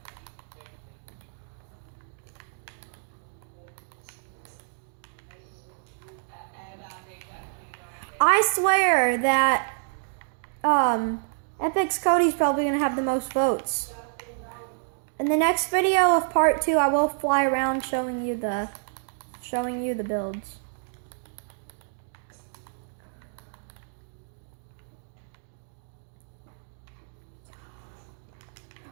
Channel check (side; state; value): left; silent; digital silence